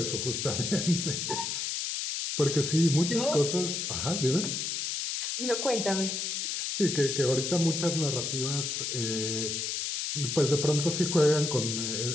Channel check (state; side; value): noise; left; hiss, 2 dB below the sound